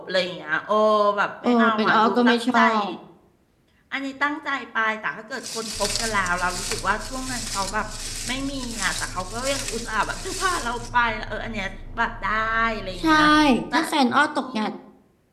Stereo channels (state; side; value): identical; both; correlation 1.00